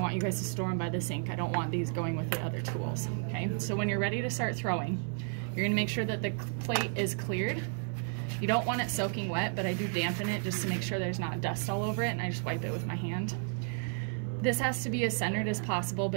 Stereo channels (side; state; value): left; silent; 56 dB below the other